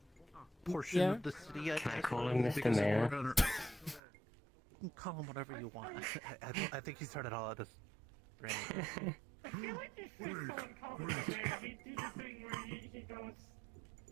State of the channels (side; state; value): left; drops out; at 4.0 s